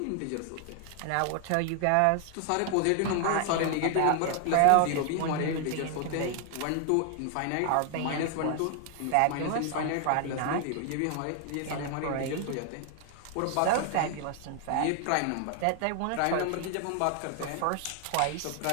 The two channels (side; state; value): both; different; correlation 0.00